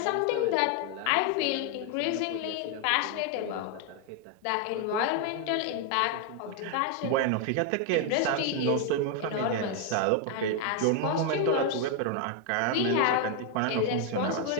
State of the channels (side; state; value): both; different; correlation 0.01